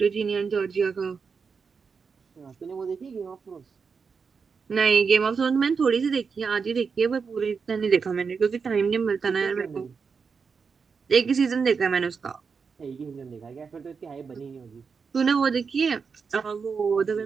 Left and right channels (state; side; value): quieter; left; 5.5 dB